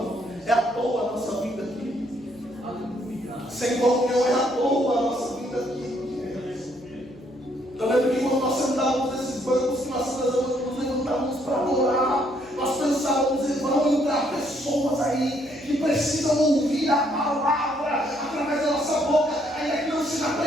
é à toa a nossa vida aqui. Sem comunhão é à toa a nossa vida aqui. Eu lembro que quando nós sentávamos nesses bancos, que nós nos levantávamos para adorar, nós pensávamos, vão entrar pessoas aí que precisam ouvir a palavra através da nossa boca, ainda que não seja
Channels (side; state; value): left; noise; hum, 28 dB below the sound